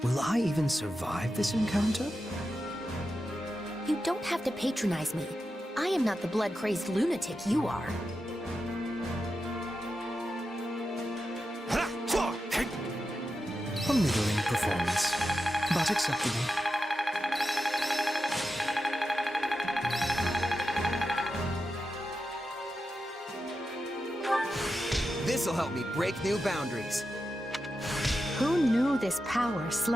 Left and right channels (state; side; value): normal; both; correlation 0.90